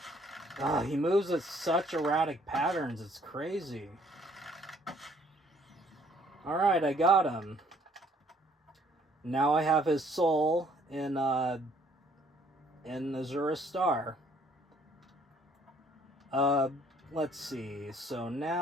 He moves at such erratic patterns. It's crazy. Alright, I got him. Now I have his soul in Azura's Star. Let's see. So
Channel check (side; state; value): both; normal; correlation 0.62